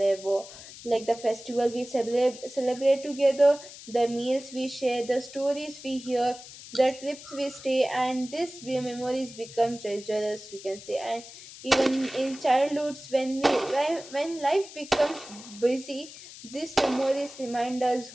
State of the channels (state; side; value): noise; left; hiss, 16 dB below the sound